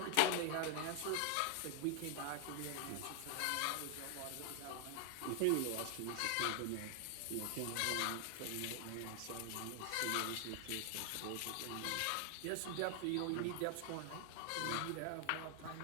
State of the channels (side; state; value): both; different; correlation 0.00